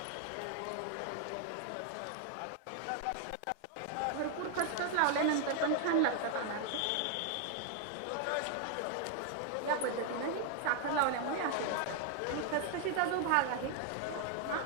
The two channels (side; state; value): both; different; correlation 0.00